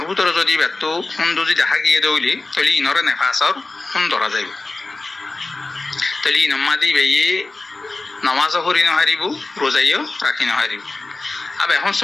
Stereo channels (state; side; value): quieter; right; 3.3 dB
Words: ভিতরে যদি ব্যর্থ খুন যদি দেখা গিয়ে দৌলি তাহলে ইনরে নেফাসর খুন ধরা যাইব তাহলে ইনমাদি বেয়ে নামাজও করি নহারিব রোজাইও রাখি নহারিব। আবার এখন